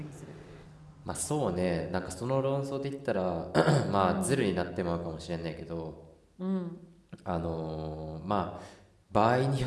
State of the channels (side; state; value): both; identical; correlation 1.00